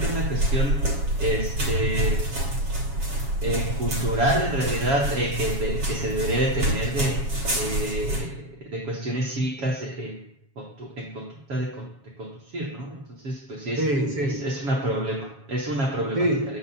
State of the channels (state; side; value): late; left; 7.3 ms